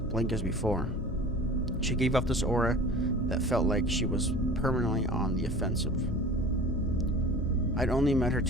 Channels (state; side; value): noise; left; hum, 10 dB below the sound